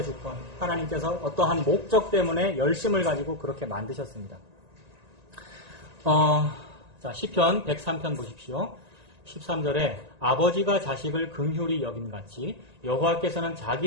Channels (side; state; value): left; late; 1.9 ms